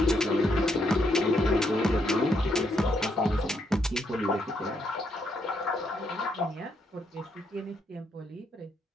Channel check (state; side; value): normal; both; correlation 0.76